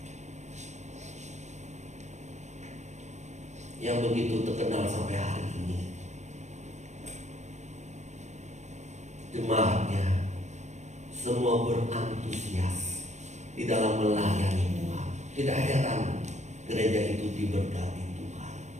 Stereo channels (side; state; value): left; late; 0.33 ms